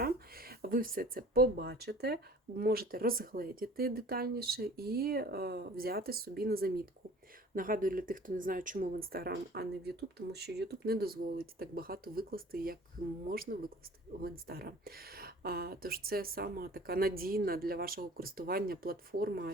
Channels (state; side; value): normal; both; correlation 0.47